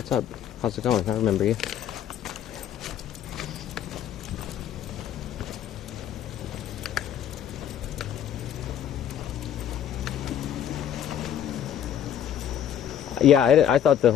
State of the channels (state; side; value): quieter; right; 9.7 dB